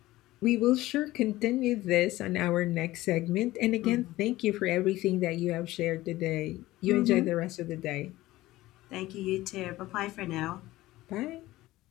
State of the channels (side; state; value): right; quieter; 17.2 dB